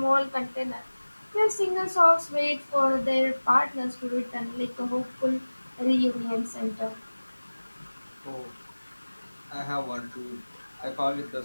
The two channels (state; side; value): inverted; both; correlation -1.00